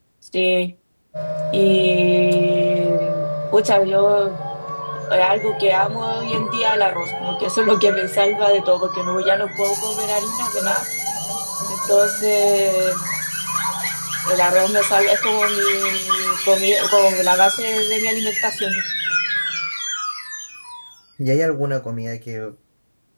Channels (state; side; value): inverted; both; correlation -1.00